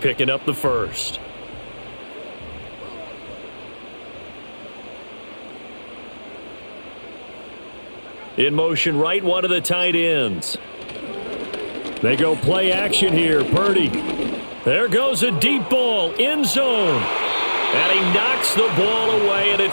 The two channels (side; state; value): both; inverted; correlation -1.00